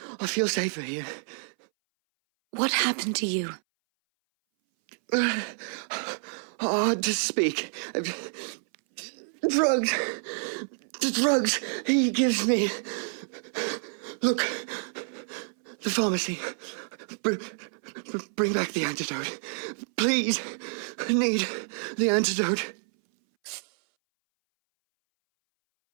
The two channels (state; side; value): silent; left; 59 dB below the other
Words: I feel safer here. What happened to you? Hard to speak. Drugs. The drugs he gives me. Look. The pharmacy. Bring back the antidote. Please. I need the antidote.